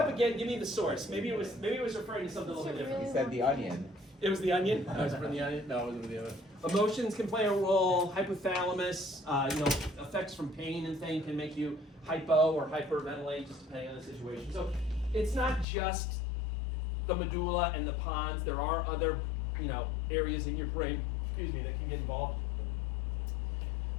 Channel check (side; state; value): right; drops out; at 15.7 s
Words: again. Give me the source. Maybe it was referring to something a little bit different. He said the onion. It was the onion. No, it was from the onion. No, it wasn't the other. Emotions can play a role. Hypothalamus, effects from pain and things can make you hypo or hyperventilate, just depending on the situation. So it's not just the medulla and the pons. There are other, areas in your brain, that can get involved.